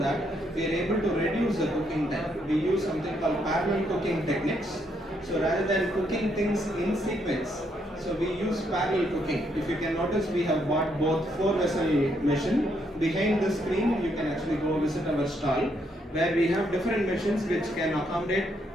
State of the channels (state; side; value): normal; both; correlation 0.75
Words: we are able to reduce the cooking time. We use something called parallel cooking techniques. So rather than cooking things in sequence, so we use parallel cooking. If you can notice, we have bought both 4-vessel machine. Behind the screen, you can actually go visit our stall where we have different machines which can accommodate